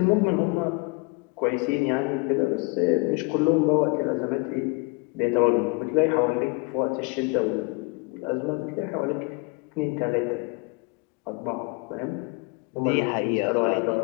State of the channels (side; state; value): right; quieter; 29.0 dB